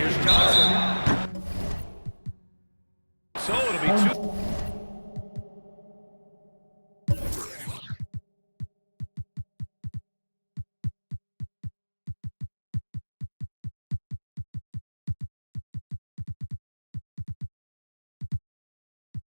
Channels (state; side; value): inverted; both; correlation -1.00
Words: Here's Johnson. So it'll be 2.